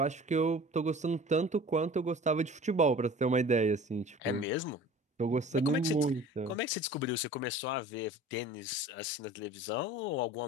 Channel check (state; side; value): normal; both; correlation 0.43